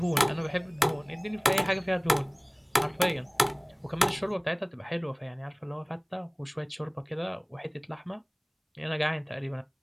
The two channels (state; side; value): identical; both; correlation 1.00